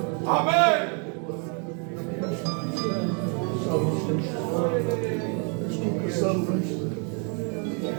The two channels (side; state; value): left; quieter; 39.1 dB